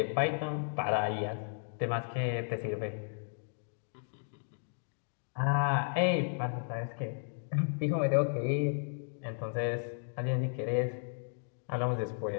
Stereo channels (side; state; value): right; silent; digital silence